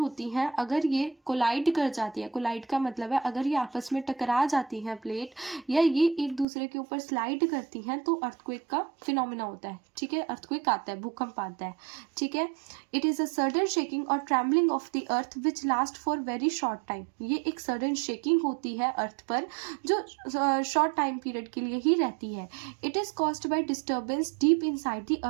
हैं अगर ये कोलाइड कर जाती है, कोलाइड का मतलब है अगर ये आपस में टकरा जाती हैं प्लेट, या ये एक दूसरे के ऊपर स्लाइड करती हैं, तो अर्थक्वेक का फिनोमिना होता है, ठीक है, अर्थक्वेक आता है, भूकंप आता है, ठीक है। It is a sudden shaking और trembling of the earth which last for very short time. ये एक सडन शेकिंग होती है अर्थ पर जो शॉर्ट टाइम पीरियड के लिए ही रहती है। It is caused by disturbance deep inside the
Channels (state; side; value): drops out; left; at 6.5 s